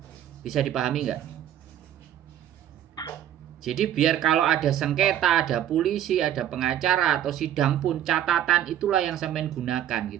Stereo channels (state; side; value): quieter; left; 11.1 dB